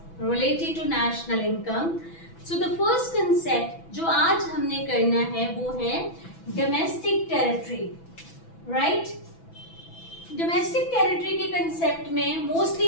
related to national income. So the first concept जो आज हमने करना है वो है domestic territory, right? Domestic territory के concept में mostly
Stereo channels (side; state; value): right; late; 6.0 ms